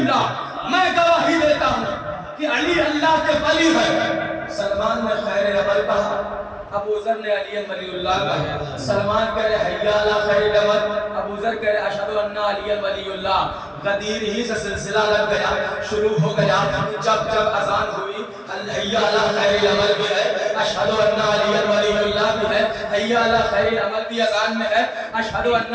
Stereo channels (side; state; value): both; identical; correlation 1.00